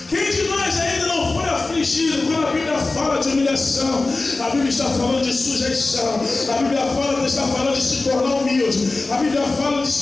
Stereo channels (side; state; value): right; quieter; 3.4 dB